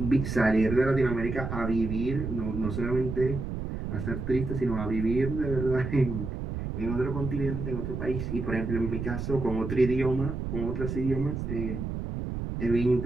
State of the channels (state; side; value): noise; right; rumble, 4 dB below the sound